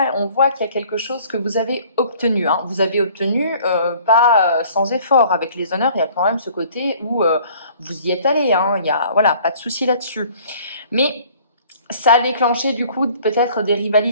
on voit qu'il y a quelque chose que vous avez obtenu. Hein. Vous avez obtenu pas sans effort. Avec les honneurs, il y a quand même ce côté où vous y êtes allé. Hein. Il y a pas de souci là-dessus. Mais ça a déclenché du coup peut-être des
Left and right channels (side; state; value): both; inverted; correlation -0.54